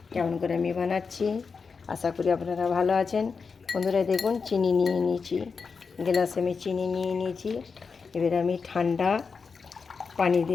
কেমন করে আমি বানাচ্ছি। আশা করি আপনারা ভালো আছেন। বন্ধুরা দেখুন, চিনি নিয়ে নিয়েছি, গ্লাসে আমি চিনি নিয়ে নিয়েছি। এবার আমি ঠান্ডা পানি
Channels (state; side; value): quieter; right; 5.1 dB